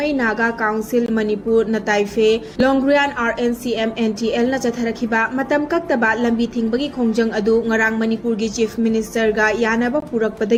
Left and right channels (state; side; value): identical; both; correlation 1.00